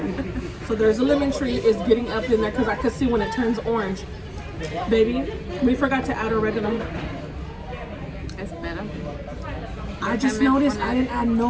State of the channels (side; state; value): both; identical; correlation 1.00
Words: So there's a lemon tree is getting up in there because I could see when it turns orange. Baby, we forgot to add oregano. It's better. I just noticed I didn't add